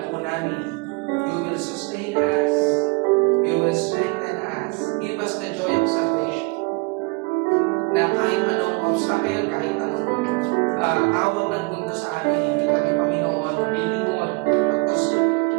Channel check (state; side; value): quieter; left; 28.9 dB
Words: po namin, you will sustain us, you will strengthen us, give us the joy of salvation. Na kahit anong obstacle, kahit anong tawag ng mundo sa amin, hindi kami, Panginoon, lilingon. Because